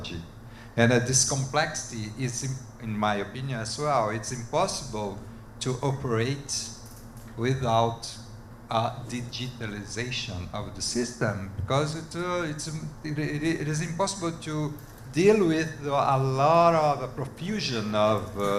and this complexity is, in my opinion as well, it's impossible to operate without digitalization of the system, because it is impossible to deal with a lot of a profusion of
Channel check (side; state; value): both; identical; correlation 1.00